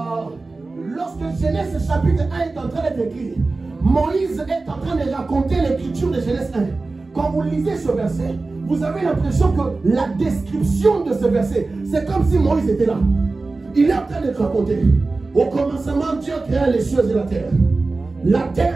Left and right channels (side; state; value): left; quieter; 3.5 dB